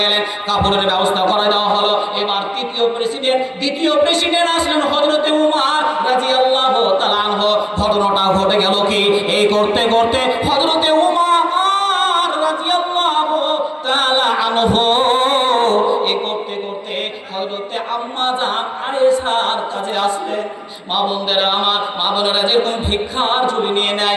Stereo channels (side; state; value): both; identical; correlation 1.00